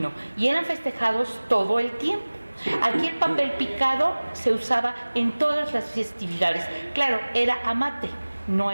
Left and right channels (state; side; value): inverted; both; correlation -1.00